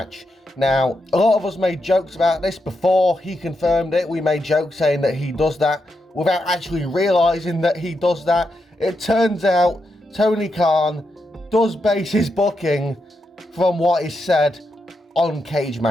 Now, a lot of us made jokes about this before he confirmed it. We made jokes saying that he does that without actually realizing that he does that. It turns out Tony Khan does base his booking from what is said on cage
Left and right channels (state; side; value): normal; both; correlation 0.84